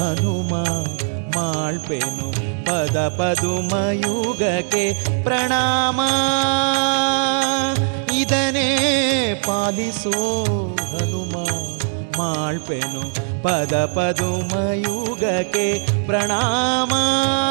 ಮಾಳ್ಪೆನು ಪದ ಪದುಮಯುಗಕ್ಕೆ ಪ್ರಣಾಮ ಇದನೇ ಪಾಲಿಸೋ ಹನುಮ ಮಾಳ್ಪೆನು ಪದ ಪದುಮಯುಗಕ್ಕೆ ಪ್ರಣಾಮ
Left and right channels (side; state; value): left; silent; 66 dB below the other